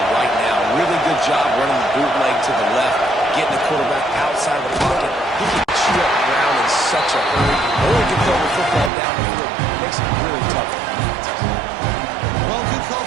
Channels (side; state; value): left; drops out; at 8.9 s